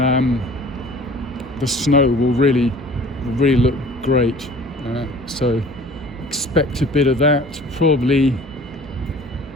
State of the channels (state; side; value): normal; both; correlation 0.47